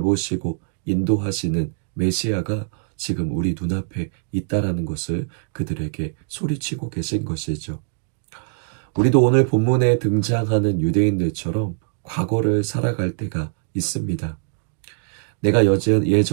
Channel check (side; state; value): left; silent; 63 dB below the other